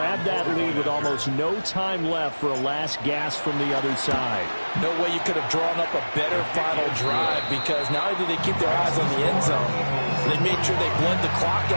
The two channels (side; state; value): both; inverted; correlation -1.00